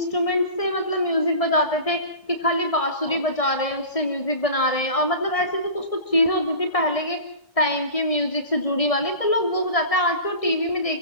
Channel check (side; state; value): right; late; 1.6 ms